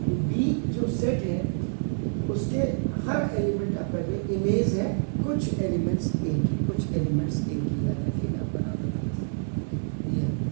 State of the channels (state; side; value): silent; left; digital silence